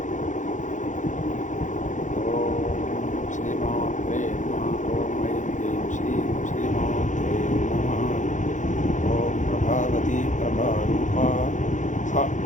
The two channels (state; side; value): late; right; 0.36 ms